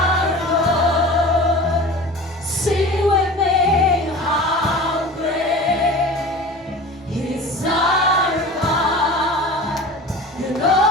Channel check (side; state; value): both; normal; correlation 0.37